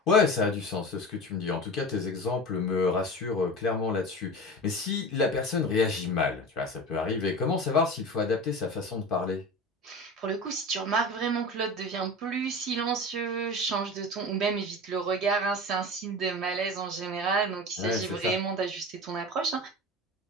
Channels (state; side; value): normal; both; correlation 0.31